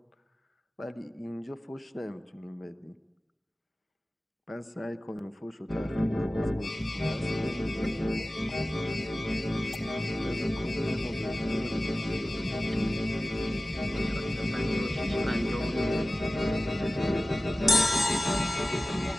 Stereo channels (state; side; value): normal; both; correlation 0.96